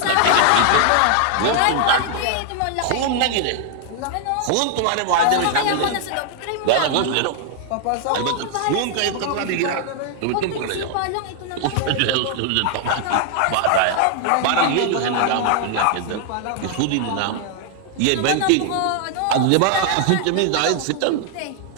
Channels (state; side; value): different; both; correlation 0.00